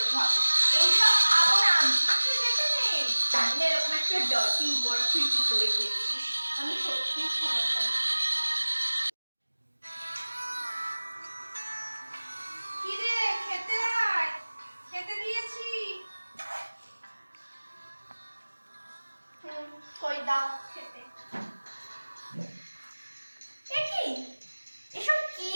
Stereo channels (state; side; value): inverted; both; correlation -1.00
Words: হবে। এইসব খাবো না আমি। আমাকে যেতে নেই। জানি না এরকম একটা ডার্টি ওয়ার্ক তুই কি করে করছিস। আমি সত্যিই ক্ষমা চাই। কি রে, খেতে আয়, খেতে দিয়েছি। কই দাও খেতে। এ কি, এসব কি